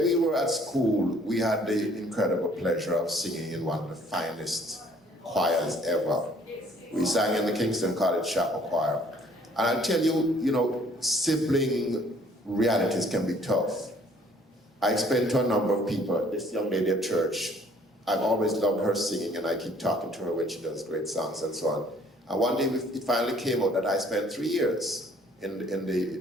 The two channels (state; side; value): normal; both; correlation 0.59